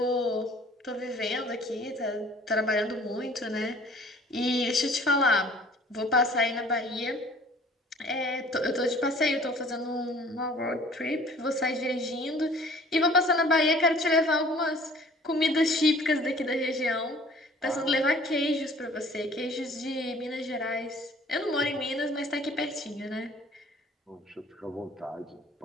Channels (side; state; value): both; normal; correlation 0.51